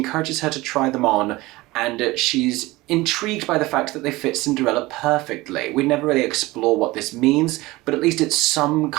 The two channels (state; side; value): quieter; left; 20.2 dB